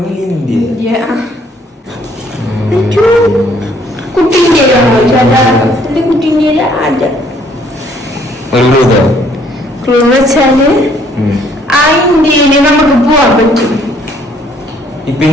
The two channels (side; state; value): both; normal; correlation 0.63